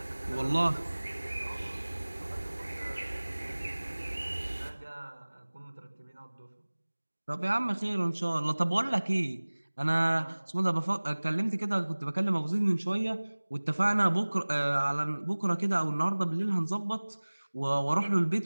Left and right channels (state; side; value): inverted; both; correlation -1.00